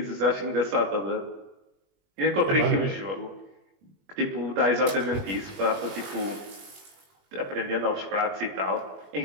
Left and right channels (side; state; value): left; late; 21 ms